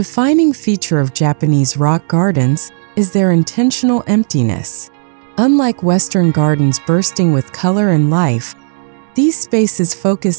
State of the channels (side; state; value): left; silent; digital silence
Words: feature of Japanese rock gardens is their intentional emptiness. Unlike Western gardens bursting with color and life, These spaces